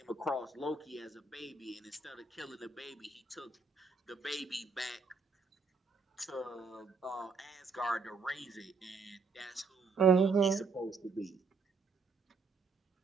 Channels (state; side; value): quieter; left; 4.4 dB